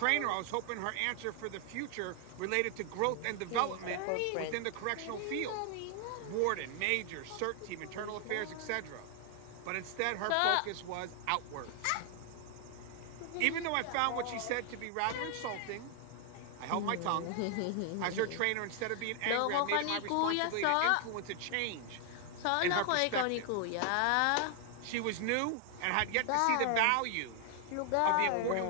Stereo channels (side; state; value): both; different; correlation 0.00